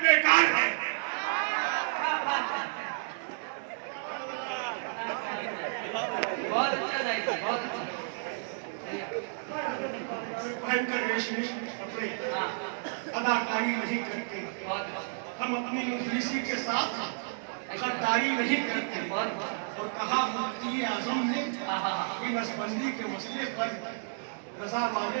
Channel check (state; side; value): silent; left; digital silence